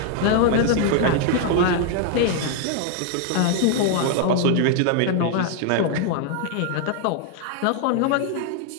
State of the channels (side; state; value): both; different; correlation 0.00